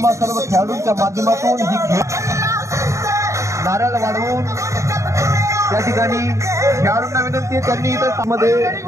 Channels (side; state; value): left; late; 0.14 ms